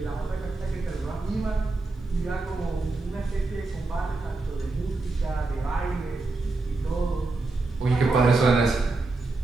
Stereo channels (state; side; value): quieter; left; 3.4 dB